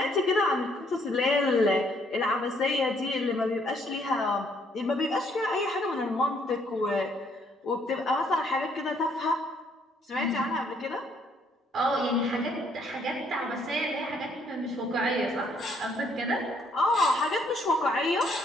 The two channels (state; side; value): normal; both; correlation 0.67